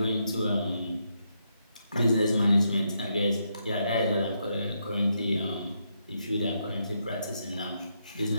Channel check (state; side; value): inverted; both; correlation -0.80